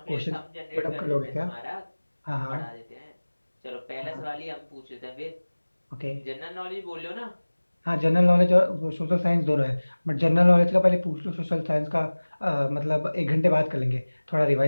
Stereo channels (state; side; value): inverted; both; correlation -1.00